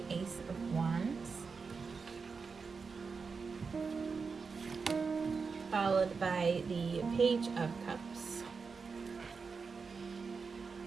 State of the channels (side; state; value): left; quieter; 5.0 dB